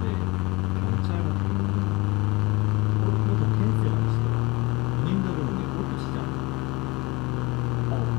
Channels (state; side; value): quieter; right; 22.8 dB